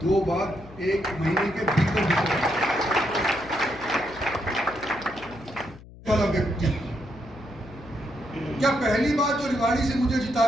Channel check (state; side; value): noise; left; hum, 19 dB below the sound